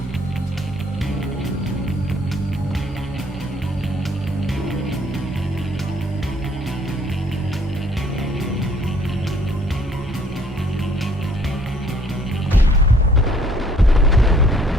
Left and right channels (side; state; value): both; normal; correlation 0.60